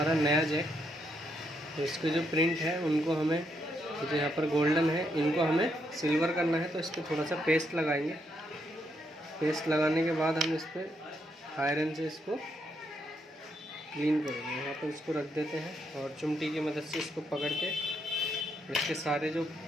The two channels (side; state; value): both; normal; correlation 0.77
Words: नया जैक, तो इसके जो प्रिंट है उनको हमें, जो यहाँ पर गोल्डन है, इनको हमें सिल्वर करना है। तो इस पर थोड़ा सा पेस्ट लगाएंगे। पेस्ट लगाने के बाद हम इस पर आयरन से इसको क्लीन करेंगे। यहाँ पर इसको रख देते हैं और चिमटी की मदद से इसको पकड़ के इसके सारे जो